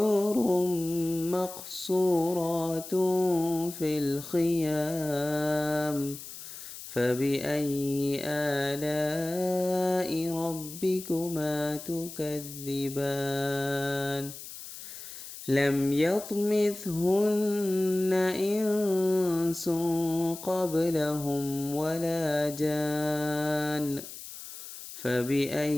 مقصورات في الخيام فبأي آلاء ربكما تكذبان لم يطمثهن إنس قبلهم ولا جان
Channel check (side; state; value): left; noise; hiss, 12 dB below the sound